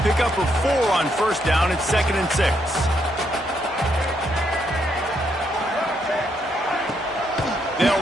pickup of 4 on first down. It's 2nd and 6.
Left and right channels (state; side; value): normal; both; correlation 0.76